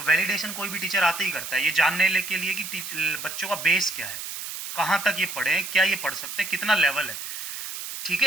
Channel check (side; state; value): right; noise; hiss, 7 dB below the sound